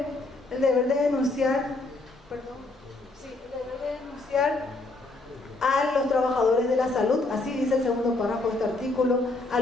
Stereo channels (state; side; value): quieter; right; 3.1 dB